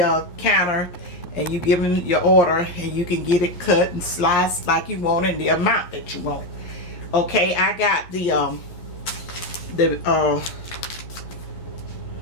counter, and you give them your order and you can get it cut and sliced like you want and the amount that you want. Okay, I got the I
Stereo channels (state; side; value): late; right; 11 ms